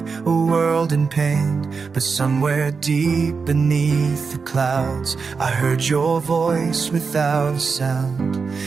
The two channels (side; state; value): left; quieter; 5.1 dB